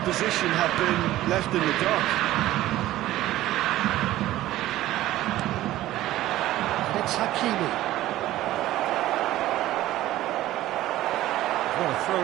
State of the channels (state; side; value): quieter; left; 15.1 dB